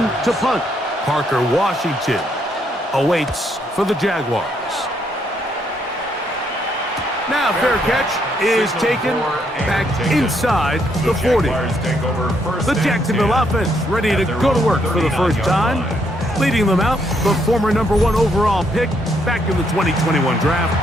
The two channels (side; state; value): both; normal; correlation 0.74